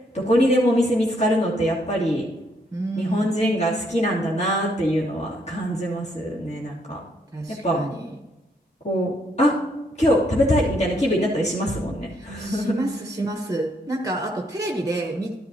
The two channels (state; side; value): normal; both; correlation 0.72